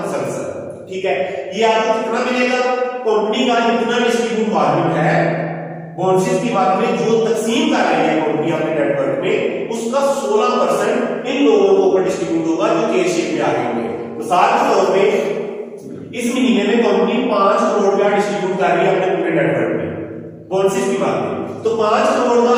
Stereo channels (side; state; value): both; identical; correlation 1.00